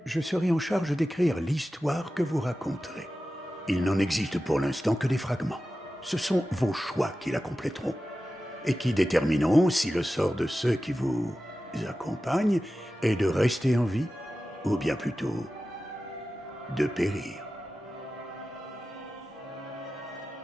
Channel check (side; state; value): both; normal; correlation 0.94